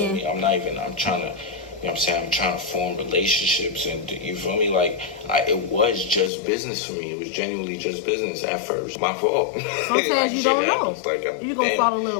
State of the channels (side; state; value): right; drops out; at 6.3 s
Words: end. I'm trying to, you know what I'm saying? I'm trying to form relationships, and you feel me? Like, it was just business for me. It was genuinely just business at first. My fault. Sometimes you don't know. Like, you're gonna fall in